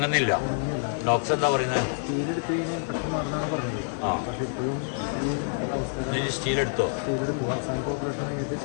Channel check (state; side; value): silent; right; 60 dB below the other